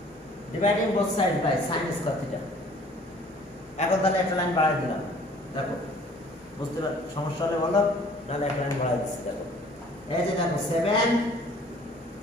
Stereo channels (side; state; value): both; normal; correlation 0.53